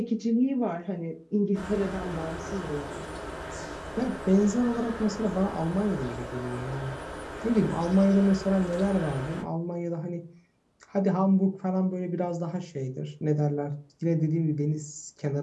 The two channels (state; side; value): identical; both; correlation 1.00